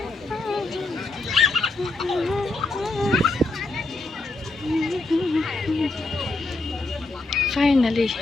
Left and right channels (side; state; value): right; quieter; 3.1 dB